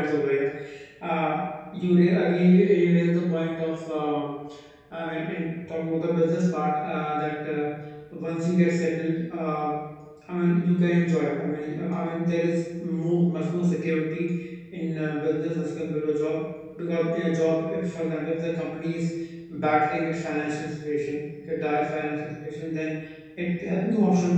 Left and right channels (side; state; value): both; identical; correlation 1.00